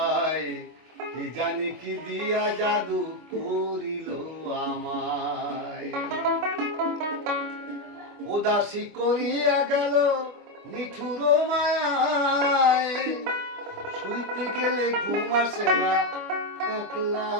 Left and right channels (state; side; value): late; left; 25 ms